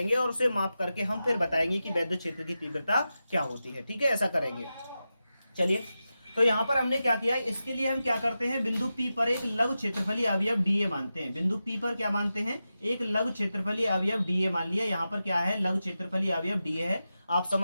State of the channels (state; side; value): inverted; both; correlation -0.92